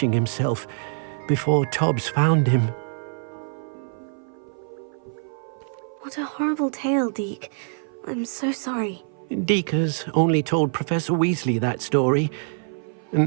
himself, before Tobbs found him. What a horrible tale, Deke. I'm so sorry. Deke has only told Professor Weasley that story, and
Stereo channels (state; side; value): silent; left; 56 dB below the other